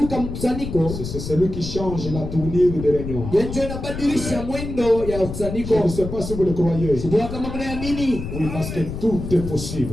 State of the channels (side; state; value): left; noise; rumble, 7 dB below the sound